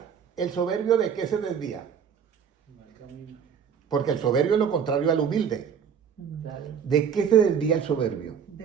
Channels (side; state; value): left; quieter; 7.4 dB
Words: El soberbio, ¿de qué se desvía? Porque el soberbio es lo contrario al humilde. ¿De qué se desvía el soberbio? De